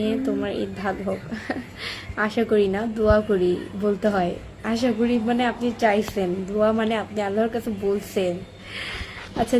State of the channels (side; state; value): both; identical; correlation 1.00